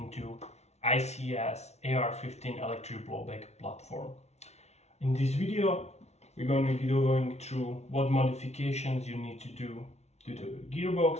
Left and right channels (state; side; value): late; right; 0.32 ms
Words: ICS AR15 electric blowback platform. In this video we're going to be going through what modifications you need to do to the